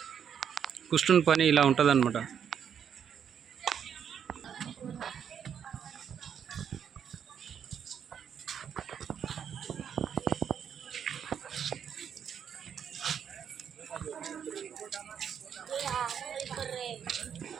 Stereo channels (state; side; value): quieter; left; 8.1 dB